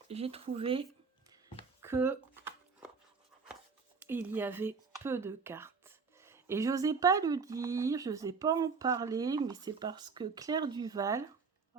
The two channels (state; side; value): quieter; left; 5.1 dB